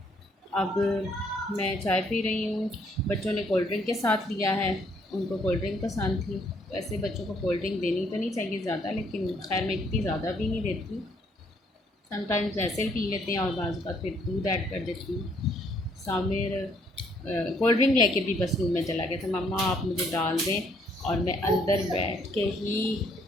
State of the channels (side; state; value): both; normal; correlation 0.67